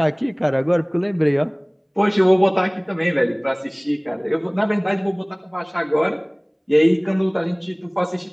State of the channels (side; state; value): both; identical; correlation 1.00